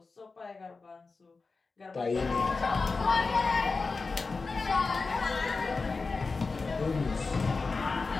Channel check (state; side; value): quieter; right; 4.2 dB